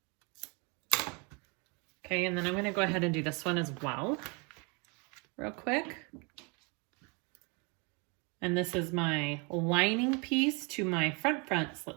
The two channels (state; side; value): quieter; left; 31.5 dB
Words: Okay, and then I'm gonna go ahead and do this one as well, real quick. And this is my lining piece to my front